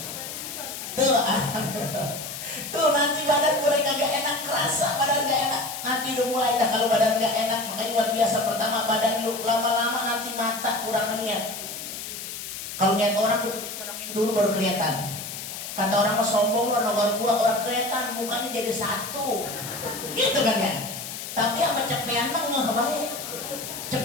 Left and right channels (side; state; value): left; noise; hiss, 8 dB below the sound